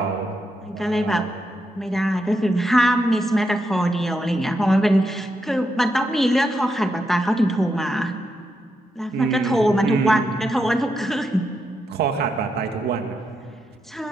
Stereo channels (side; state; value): both; normal; correlation 0.83